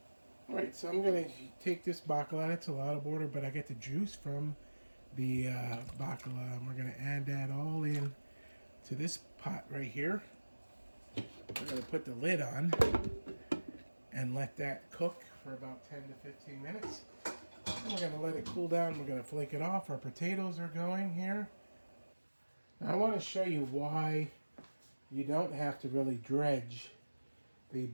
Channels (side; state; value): both; inverted; correlation -1.00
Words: All right, so I'm going to take this Baccalà. It's a lot of water, but I get the juice from the Baccalà, and we're going to add that all in to this pot right here. We're going to put the lid on and let that cook for about 10 to 15 minutes. And we're going to let it cool down. We're going to flake it off. Our potatoes are going here. Now I want to show you why you don't have to really dredge the